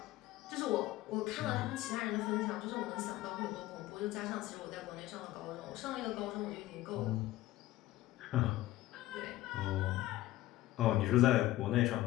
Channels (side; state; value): right; quieter; 16.2 dB